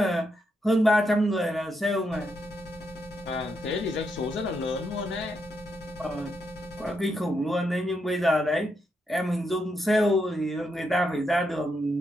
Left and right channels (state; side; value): normal; both; correlation 0.81